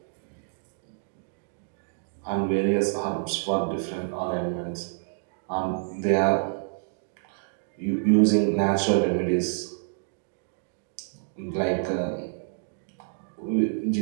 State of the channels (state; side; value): silent; left; digital silence